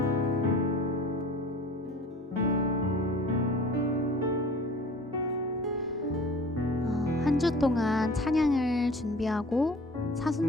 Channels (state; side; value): normal; both; correlation 0.44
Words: 주 동안 찬양을 준비하고